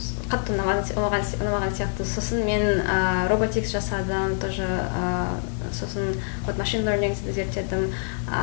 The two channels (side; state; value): right; silent; digital silence